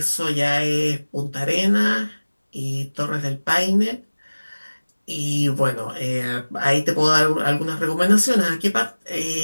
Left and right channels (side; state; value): both; inverted; correlation -1.00